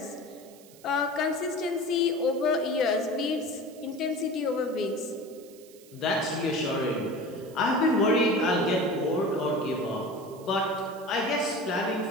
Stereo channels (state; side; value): noise; right; hiss, 23 dB below the sound